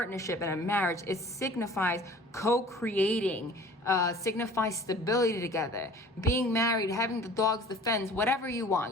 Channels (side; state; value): both; normal; correlation 0.47